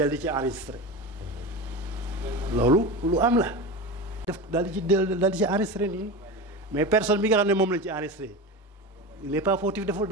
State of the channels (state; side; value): normal; both; correlation 0.26